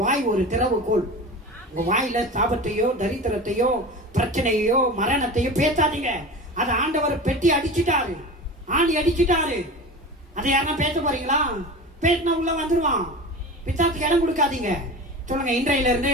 வாய் ஒரு திறவுகோல். உங்க வாயில சாபத்தையோ தரித்திரத்தையோ பிரச்சனையோ மரணத்தையோ பேசாதீங்க. அதை ஆண்டவர் பெட்டி அடிச்சுட்டாரு, ஆணி அடிச்சுட்டாரு. அதை யாருன்னா பேச போறீங்களா? பேசினா உள்ள வந்துருவான். பிசாசுக்கு இடம் கொடுக்காதீங்க. சொல்லுங்க, இன்றையில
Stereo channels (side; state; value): both; normal; correlation 0.32